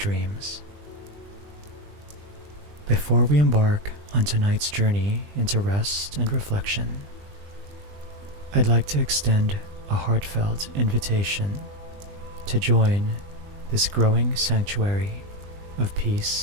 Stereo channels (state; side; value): late; left; 20 ms